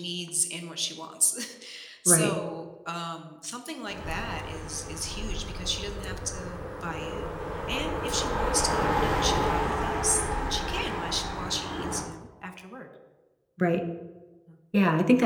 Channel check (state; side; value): identical; both; correlation 1.00